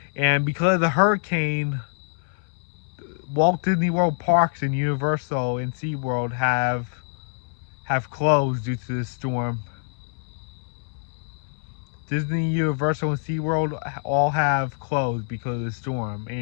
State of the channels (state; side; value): silent; right; 61 dB below the other